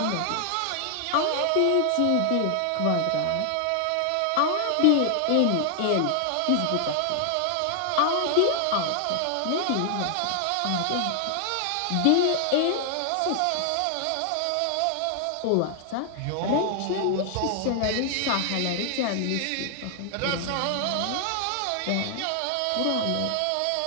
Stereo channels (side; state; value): both; different; correlation 0.00